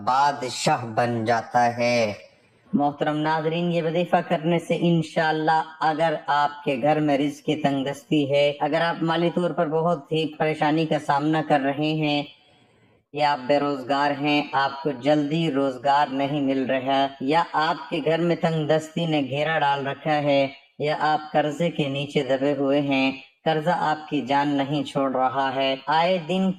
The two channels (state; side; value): identical; both; correlation 1.00